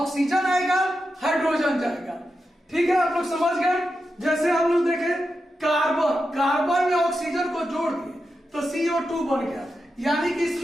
आएगा हाइड्रोजन जाएगा। ठीक है, आप लोग समझ गए। जैसे हम लोग देखे कार्बन में ऑक्सीजन को जोड़ दिए तो CO2 बन गया, यानी कि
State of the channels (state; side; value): normal; both; correlation 0.89